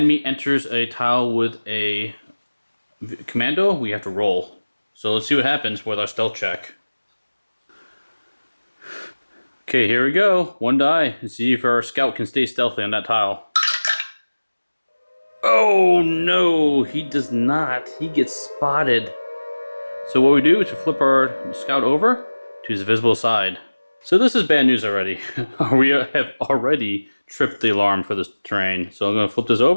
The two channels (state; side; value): inverted; both; correlation -1.00